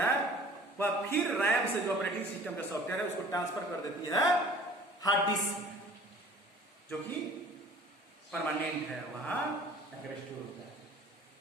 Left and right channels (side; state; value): both; normal; correlation 0.48